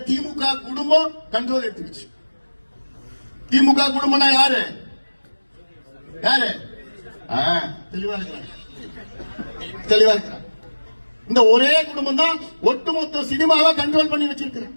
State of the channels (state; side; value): inverted; both; correlation -1.00